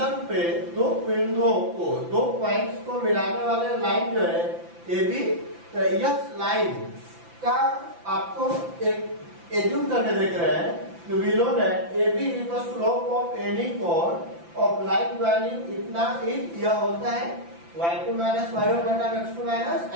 पे दो बिंदुओं को, दो पॉइंट्स को मिलाने वाले लाइन जो है ए बी, तो यह लाइन का आपको एक एज्यूम करके देख रहे हैं कि we know that A B is the slope of any chord of line joining, इतना इज यह होता है y2 माइनस y1 बटा x2 माइनस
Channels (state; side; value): late; left; 5.9 ms